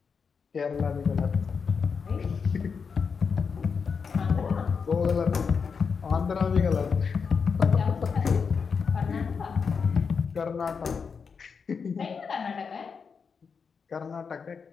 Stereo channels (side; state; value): right; quieter; 5.7 dB